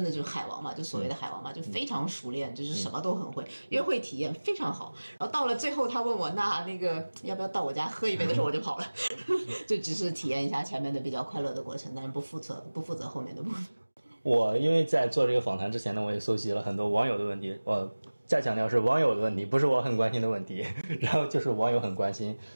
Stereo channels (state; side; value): inverted; both; correlation -1.00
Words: 的就是海王嘛，就所谓的海王嘛，就非常熟练，就是什么都很会，约会体验非常好。然后到了最后，他问我那个要不要到我家喝一杯的时候，我就跑了，就只是体验一下前面的比较快乐的过程，但是不负责后面的部分。我因为在做这个访谈之前呢，我也搜集了很多网友的问题，我再强调是网友的问题，不是我很关心的问题。然后就是网友很关心